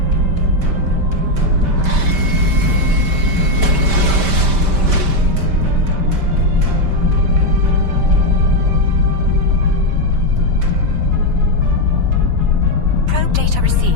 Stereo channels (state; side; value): late; left; 5.1 ms